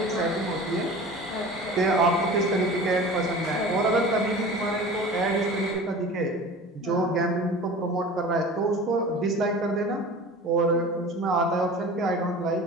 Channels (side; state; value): both; normal; correlation 0.38